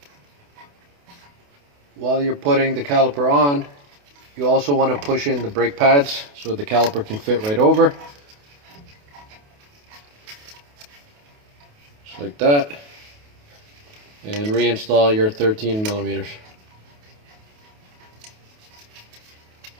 while you're putting the caliper on, you also want to push in the brake pads so the caliper can fit right over. Just like that. And reinstall your 13 millimeters.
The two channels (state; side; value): late; left; 28 ms